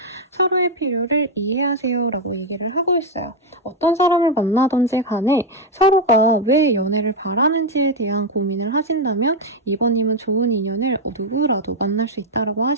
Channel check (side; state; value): both; normal; correlation 0.02